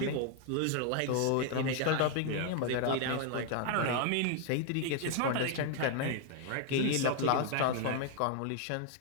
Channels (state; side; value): different; both; correlation 0.00